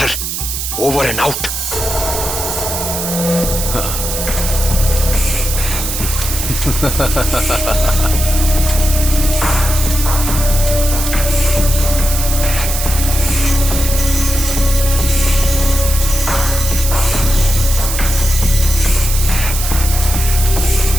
over and out.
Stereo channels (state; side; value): noise; right; hiss, 4 dB below the sound